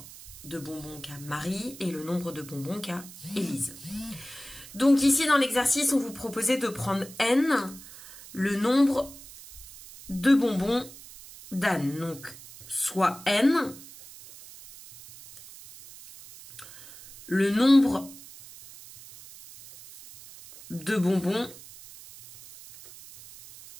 de bonbons qu'a Marie et le nombre de bonbons qu'a Élise. Donc ici dans l'exercice, on vous proposait de prendre N, le nombre de bonbons d'Anne. Donc soit N, le nombre de bonbons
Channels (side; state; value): right; noise; hiss, 17 dB below the sound